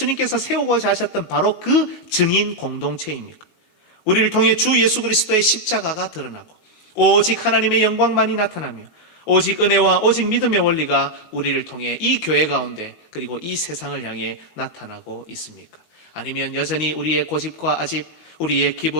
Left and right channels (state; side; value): late; right; 19 ms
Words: 세우고자 하셨던 바로 그 증인 공동체입니까? 우리를 통해 주 예수 그리스도의 십자가가 드러나고 오직 하나님의 영광만이 나타나며 오직 은혜와 오직 믿음의 원리가 우리를 통해 이 교회 가운데 그리고 이 세상을 향해 나타나고 있습니까? 아니면 여전히 우리의 고집과 아집, 우리의